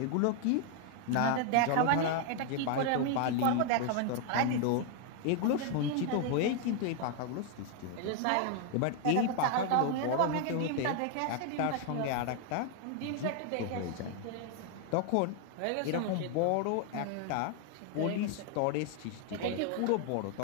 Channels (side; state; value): both; different; correlation 0.00